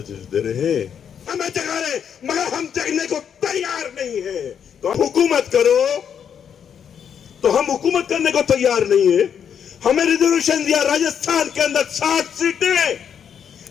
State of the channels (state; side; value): quieter; right; 8.0 dB